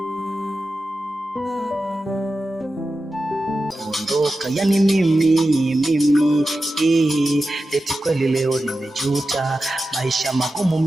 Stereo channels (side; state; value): both; normal; correlation 0.92